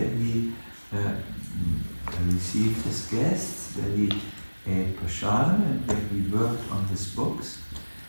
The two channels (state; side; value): inverted; both; correlation -1.00